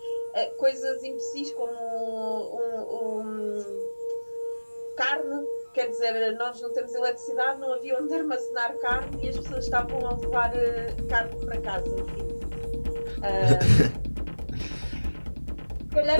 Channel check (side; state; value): both; inverted; correlation -1.00